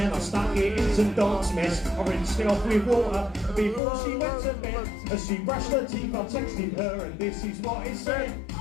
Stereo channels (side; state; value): right; drops out; at 3.8 s